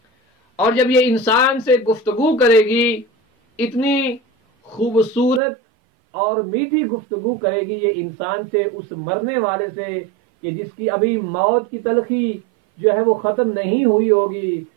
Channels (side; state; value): left; drops out; at 5.4 s